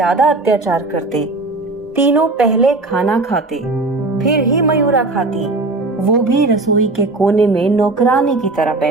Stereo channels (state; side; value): quieter; left; 3.2 dB